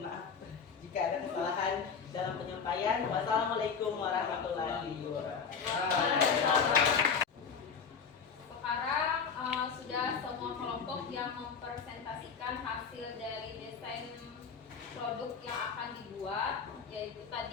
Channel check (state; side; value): quieter; right; 6.1 dB